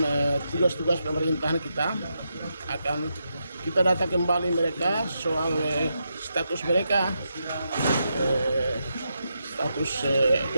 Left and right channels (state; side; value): inverted; both; correlation -0.84